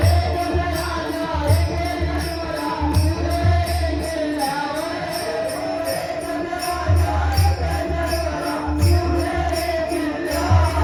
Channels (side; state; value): both; identical; correlation 1.00